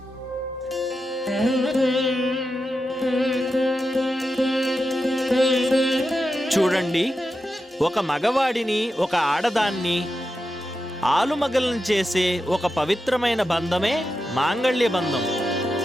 చూడండి, ఒక మగవాడిని ఒక ఆడదాన్ని ఆలుమగలను చేసే ఒక పవిత్రమైన బంధమే మాంగళ్య బంధం.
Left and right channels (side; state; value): both; normal; correlation 0.89